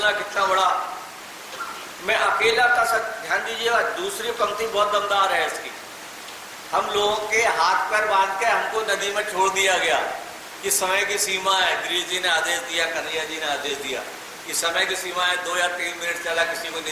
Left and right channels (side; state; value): both; identical; correlation 1.00